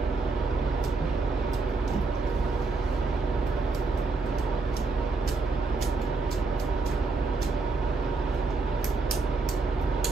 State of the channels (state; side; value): quieter; left; 3.8 dB